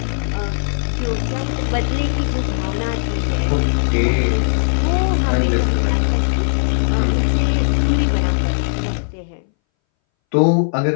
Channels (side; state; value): right; silent; 63 dB below the other